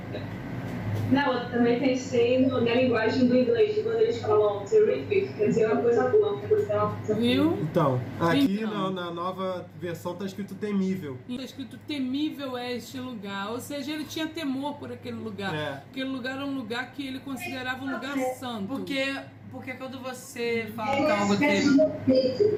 Não, eu também pensei na linguagem do inglês, quando eles falam terrific, quer dizer uma coisa boa, quer dizer uma coisa Viu? Então, aqui Então. na nova versão tá escrito temível. Está escrito temível é este lugar, ou seja, ele tinha temor por aquele lugar. É. Aquele lugar era um lugar que ele considerava um lugar santo. Porque quando você fala que É algo uma espécie terrível. de respeito,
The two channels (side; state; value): both; identical; correlation 1.00